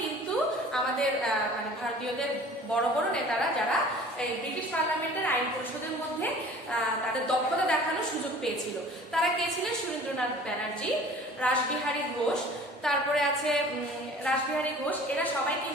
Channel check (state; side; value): normal; both; correlation 0.46